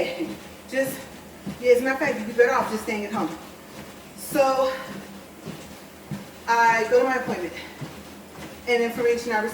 as a matter of fact, you'd be better off just staying at home. So I go to my appointment, and information I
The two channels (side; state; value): both; identical; correlation 1.00